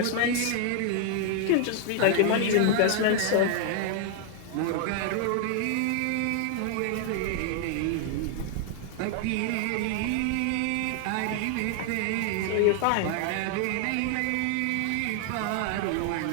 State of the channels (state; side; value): different; both; correlation 0.00